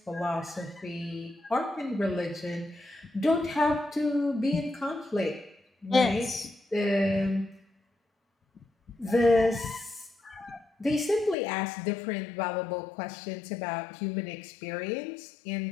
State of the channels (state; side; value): drops out; right; at 11.4 s